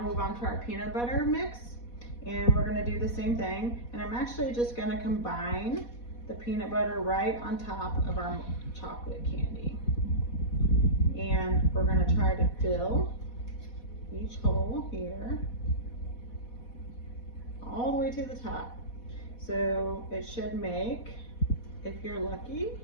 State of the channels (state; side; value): late; right; 4.1 ms